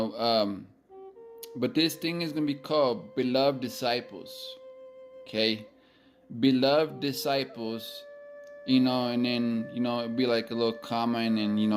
but this thing is going to be called Beloved Disciples. Okay, Beloved Disciples. And then it'd be like a little comma, and then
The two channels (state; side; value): identical; both; correlation 1.00